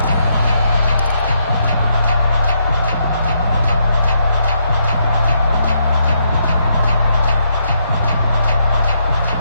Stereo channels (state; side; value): inverted; both; correlation -0.77